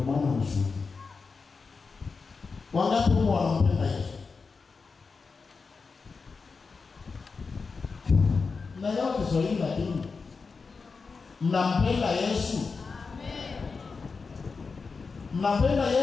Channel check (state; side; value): quieter; right; 4.7 dB